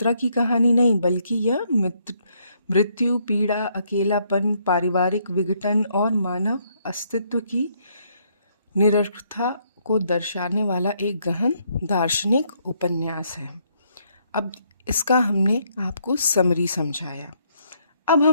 की कहानी नहीं बल्कि यह मृत्यु, पीड़ा, अकेलापन, पारिवारिक विघटन और मानव अस्तित्व की निरर्थकता को दर्शाने वाला एक गहन दार्शनिक उपन्यास है। अब इसका हमने आपको समरी समझाया। अब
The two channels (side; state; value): both; inverted; correlation -0.71